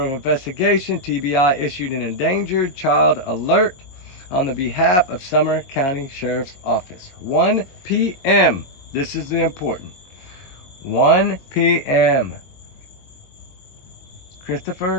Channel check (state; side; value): late; right; 22 ms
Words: of Investigation, TBI, issued an endangered child alert on the behalf of Sumner County Sheriff's Office. 1 p.m. This is the important. 1 p.m.